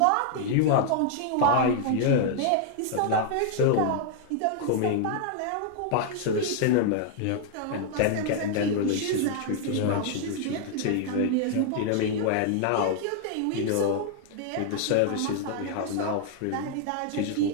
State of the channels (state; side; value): different; both; correlation 0.00